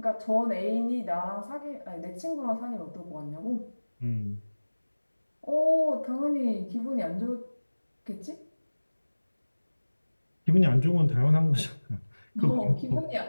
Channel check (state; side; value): inverted; both; correlation -1.00